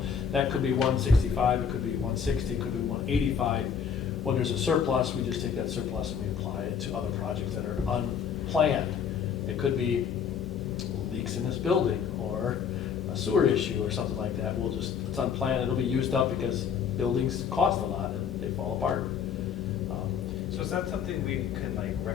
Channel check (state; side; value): quieter; right; 7.2 dB